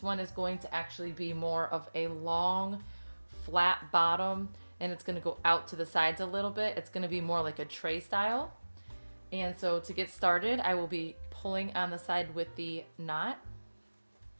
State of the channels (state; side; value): inverted; both; correlation -1.00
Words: one is going to actually be more of a long, flat bottom, and it's going to go out to the sides a little bit. It's going to be more like a tray style. And so to get started, I will be pulling on the side with the knot.